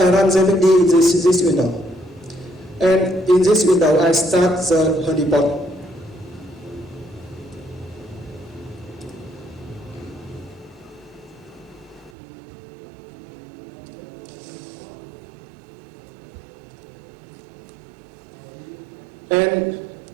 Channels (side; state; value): left; drops out; at 12.1 s